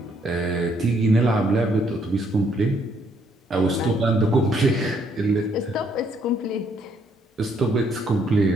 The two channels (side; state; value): both; normal; correlation 0.69